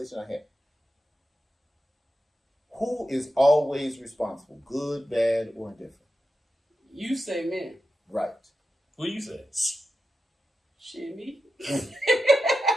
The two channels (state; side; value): normal; both; correlation 0.90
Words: I have. Who is always responsible? Good, bad, or indifferent? You say men. Right. What you say? Shit, me.